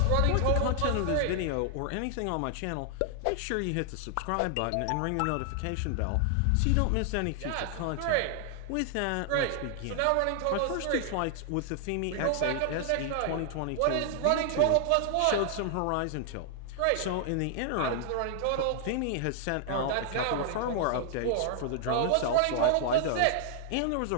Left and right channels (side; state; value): both; different; correlation 0.00